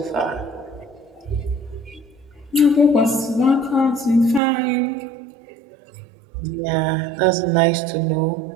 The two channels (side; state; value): left; drops out; at 4.4 s